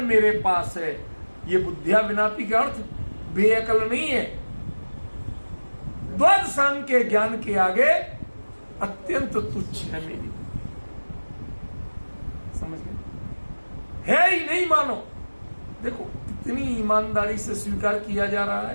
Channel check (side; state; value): both; inverted; correlation -1.00